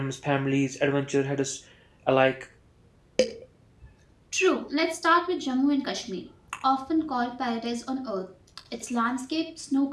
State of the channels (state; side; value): identical; both; correlation 1.00